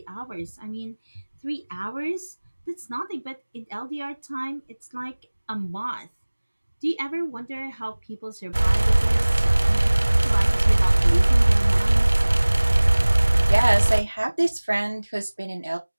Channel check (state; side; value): inverted; both; correlation -1.00